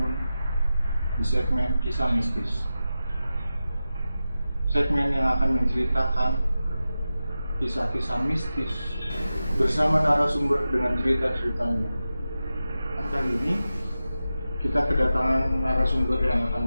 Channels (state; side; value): inverted; both; correlation -0.93